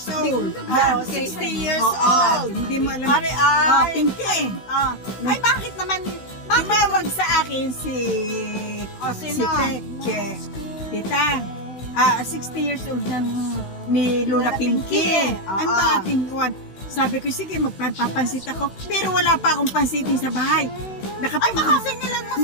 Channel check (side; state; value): right; late; 16 ms